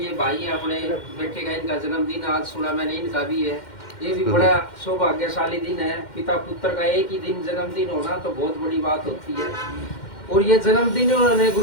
भाई है, अपने बेटे का इनका जन्मदिन आज सुना मैंने, इनका भी है, ये भी बड़ा सौभाग्यशाली दिन है। पिता पुत्र का एक ही दिन जन्मदिन होना तो बहुत बड़ी बात होती है। और ये जन्मदिन उन्होंने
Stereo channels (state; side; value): late; right; 2.1 ms